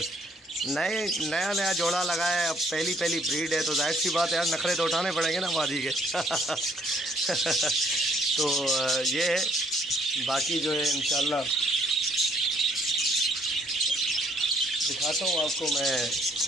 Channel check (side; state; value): both; normal; correlation 0.65